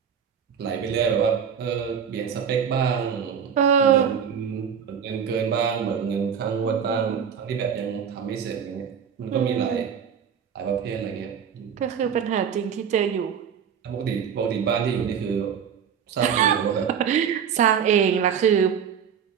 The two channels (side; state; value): left; quieter; 7.6 dB